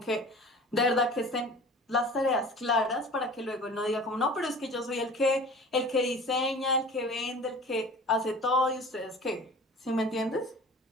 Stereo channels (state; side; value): normal; both; correlation 0.42